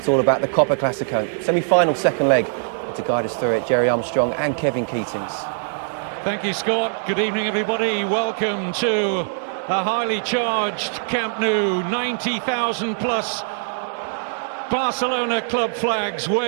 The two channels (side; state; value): left; silent; digital silence